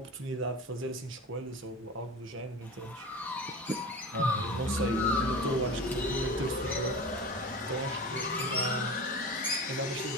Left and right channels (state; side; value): normal; both; correlation 0.32